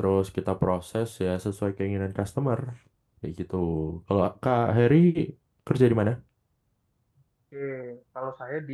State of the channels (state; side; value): identical; both; correlation 1.00